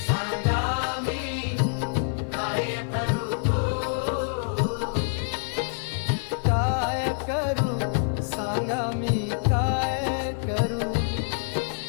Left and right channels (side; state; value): right; silent; 61 dB below the other